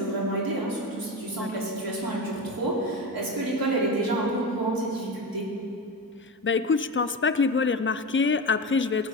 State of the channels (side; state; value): both; normal; correlation 0.22